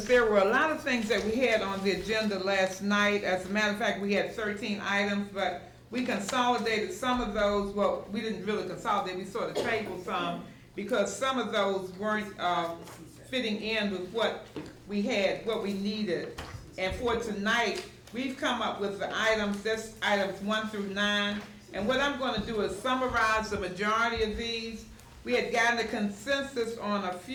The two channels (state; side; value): identical; both; correlation 1.00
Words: there were a lot of things that we had on the agenda last night. As a matter of fact, we had 13 items, but we consolidated some of those. Well, we didn't really consolidate, we sort of tabled some because some of those weren't fitting in with what we had, what we needed. And for tonight, we've come up with the items, that's items 1 through 9. And what I'm going to do is summarize the majority of these. We had gotten a consensus on a